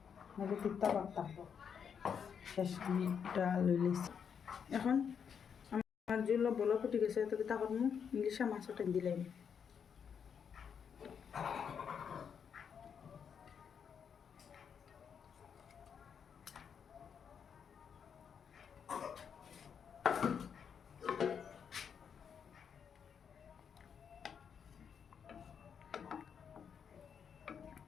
নাহলে তিতা ভাব থাকবো। শেষ আমি ডাল লইছি। এখন আমার যেগুলো বলো ফুটে গেছে, তো কিতা করবো, ইলিশা মাছটা দিলাম।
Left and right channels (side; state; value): right; quieter; 7.2 dB